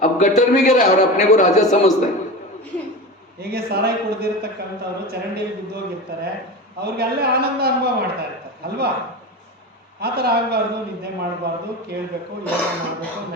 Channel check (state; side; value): normal; both; correlation 0.27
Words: अब गटर में गिरा है और अपने को राजा समझता है। ಹೀಗೆ ಸಾರಾಯಿ ಕುಡಿದಿರ್ತಕ್ಕಂಥವ್ರು ಚರಂಡಿಯಲ್ಲಿ ಬಿದ್ದೋಗಿರ್ತಾರೆ, ಅವ್ರಿಗೆ ಅಲ್ಲೇ ಆನಂದ ಅನುಭವ ಮಾಡ್ತಾ ಇರ್ತಾರೆ ಅಲ್ವಾ? ಆ ಥರ ಆಗಬಾರ್ದು. ನಿದ್ದೆ ಮಾಡಬಾರ್ದು, ಕೇಳಬೇಕು, ಯೋಗ ಮಾಡಬೇಕು,